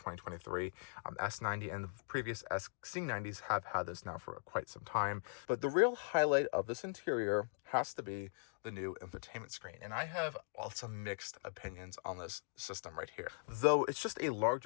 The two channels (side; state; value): right; silent; digital silence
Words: S90, and the previous XC90s have had this now for quite some time. But the real highlight of this interior has to be the new infotainment screen, and I have some mixed opinions on this system right here. Though it's just a